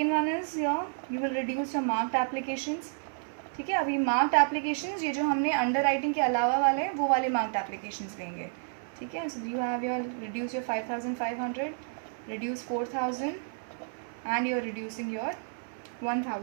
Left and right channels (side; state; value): left; silent; 57 dB below the other